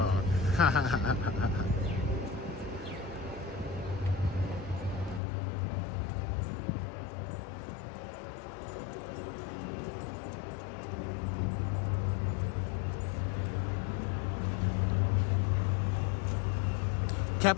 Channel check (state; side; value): drops out; right; at 5.2 s